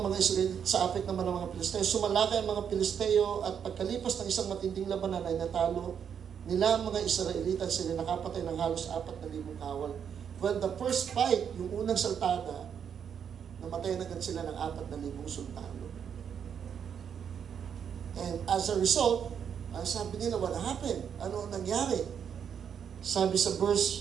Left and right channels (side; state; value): left; quieter; 7.8 dB